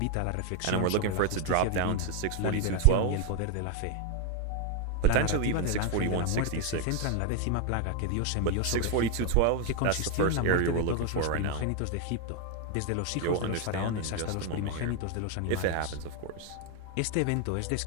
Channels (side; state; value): both; different; correlation 0.00